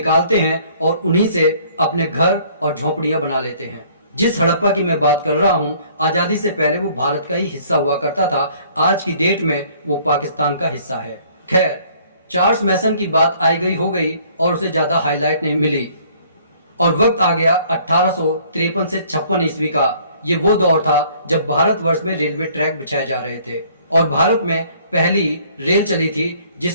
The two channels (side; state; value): both; inverted; correlation -0.58